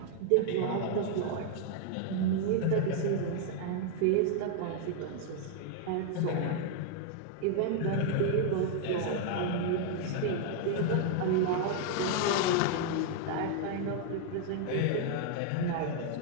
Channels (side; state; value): both; different; correlation 0.00